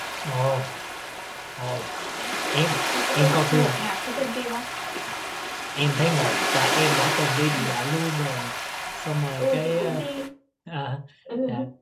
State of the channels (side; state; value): both; identical; correlation 1.00